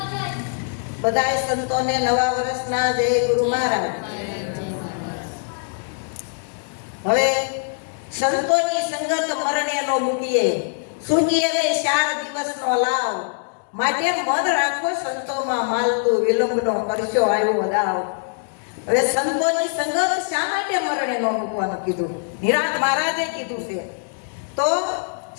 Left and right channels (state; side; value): silent; right; digital silence